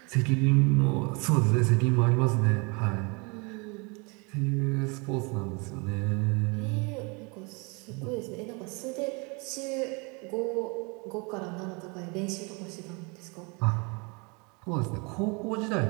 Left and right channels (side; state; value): left; quieter; 30.7 dB